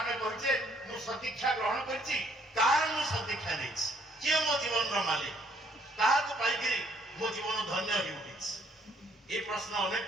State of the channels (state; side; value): normal; both; correlation 0.66